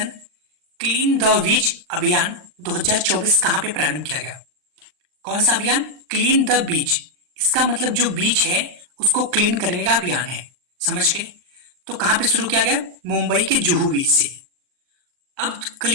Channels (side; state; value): left; late; 39 ms